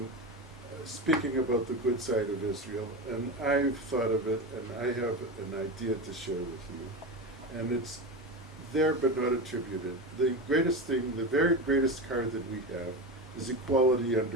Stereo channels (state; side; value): normal; both; correlation 0.22